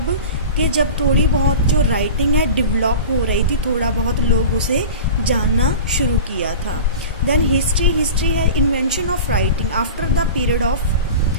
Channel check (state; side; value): inverted; both; correlation -0.34